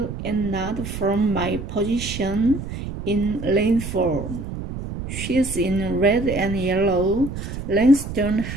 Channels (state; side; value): noise; right; rumble, 8 dB below the sound